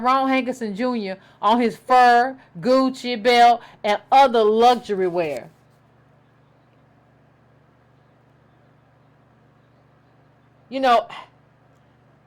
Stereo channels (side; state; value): both; identical; correlation 1.00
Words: Jr. on his fur, Gucci belt, and other luxury wear. I